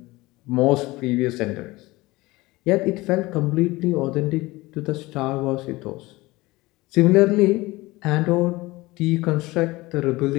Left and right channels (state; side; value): quieter; right; 20.8 dB